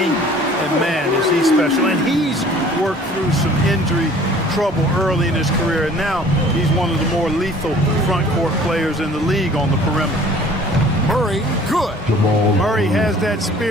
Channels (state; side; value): normal; both; correlation 0.51